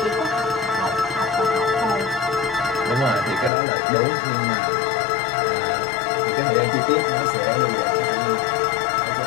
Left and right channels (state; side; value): drops out; right; at 3.5 s